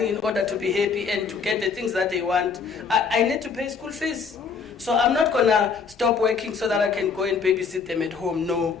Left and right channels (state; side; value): quieter; right; 5.6 dB